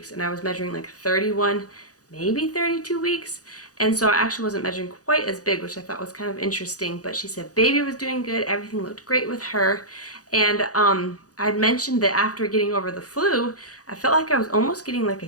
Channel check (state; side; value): late; right; 0.67 ms